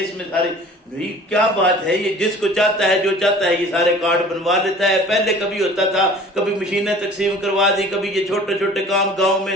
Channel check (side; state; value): both; normal; correlation 0.46